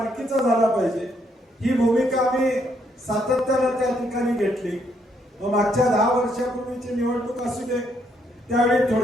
झाला पाहिजे ही भूमिका आम्ही सातत्यानं त्या ठिकाणी घेतली. मागच्या 10 वर्षापूर्वीची निवडणूक असू दे, त्यावेळी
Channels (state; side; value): normal; both; correlation 0.73